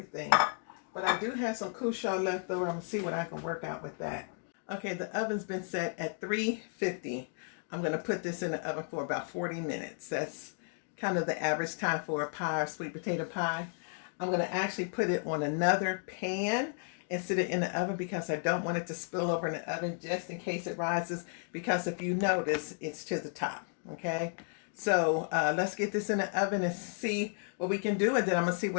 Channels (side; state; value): right; silent; 55 dB below the other